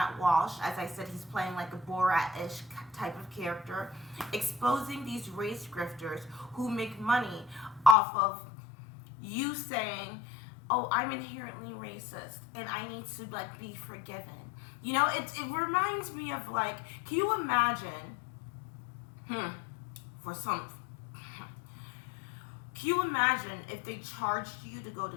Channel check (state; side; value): drops out; right; at 8.0 s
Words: Walsh. As I said, he's playing like a Borat-ish type of character, exposing these race grifters who make money off of you saying, oh, I'm inherently racist and I need to like be forgiven. You know, it reminds me of like, can you imagine, can you imagine if they charged you to go